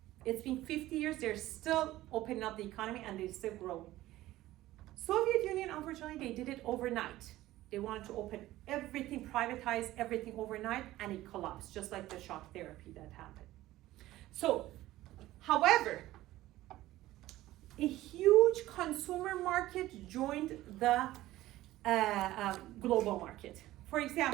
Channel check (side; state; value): left; quieter; 16.0 dB